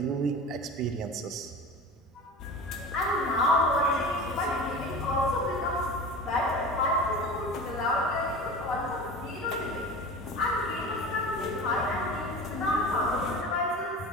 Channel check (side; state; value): both; normal; correlation 0.33